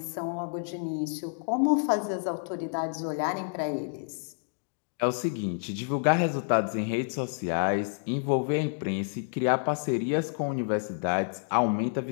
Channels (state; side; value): silent; right; digital silence